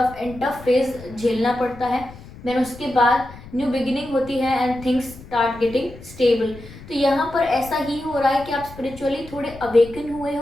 एंड टफ फेज झेलना पड़ता है, देन उसके बाद न्यू बिगिनिंग होती है and things start getting stable. तो यहाँ पर ऐसा ही हो रहा है कि आप स्पिरिचुअली थोड़े अवेकन हुए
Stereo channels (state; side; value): noise; left; rumble, 17 dB below the sound